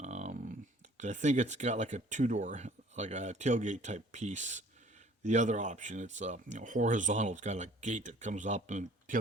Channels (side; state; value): both; normal; correlation 0.53